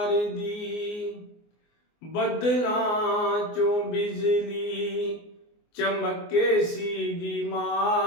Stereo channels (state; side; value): late; right; 24 ms